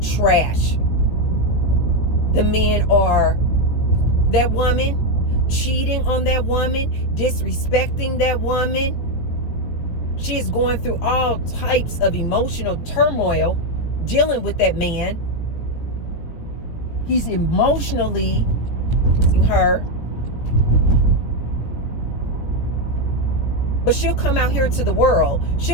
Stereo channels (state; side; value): late; right; 17 ms